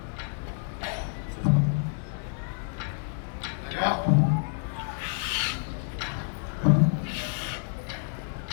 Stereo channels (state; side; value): silent; right; 59 dB below the other